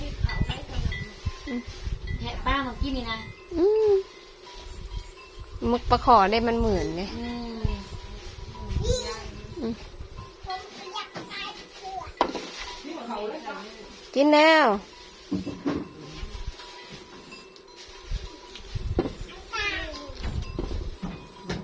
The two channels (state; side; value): identical; both; correlation 1.00